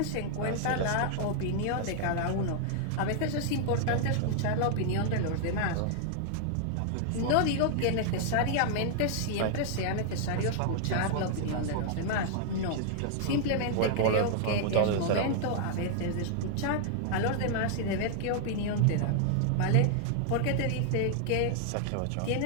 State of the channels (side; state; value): both; different; correlation -0.01